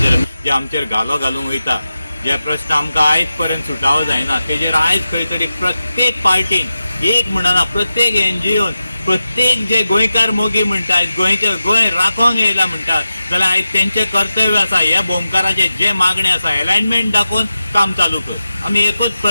जे आमचेर घालो घालूंक वयता जे प्रश्न आमकां आयज पर्यंत सुटावो जायना तेजेर आयज खंय तरी प्रत्येक पार्टीन एक म्हणना प्रत्येक NGOन प्रत्येक जे गोंयकार मोगी म्हणटात गोंय राखोंक येयला म्हणटात जाल्यार आयज तेंचें कर्तव्य आसा ह्या बोमकाराचे जे मागणे आसा अलायनमेंट दाखोवन काम चालू कर। आमी एकूच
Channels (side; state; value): both; inverted; correlation -0.92